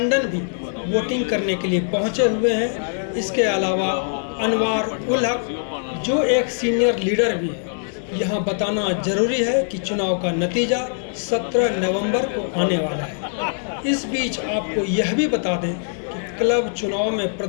भी वोटिंग करने के लिए पहुंचे हुए हैं। इसके अलावा अनवार उल हक, जो एक सीनियर लीडर भी है। यहाँ बताना जरूरी है कि चुनाव का नतीजा 17 नवंबर को आने वाला है। इस बीच आपको यह भी बता दें कि क्लब चुनाव में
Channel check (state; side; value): silent; right; digital silence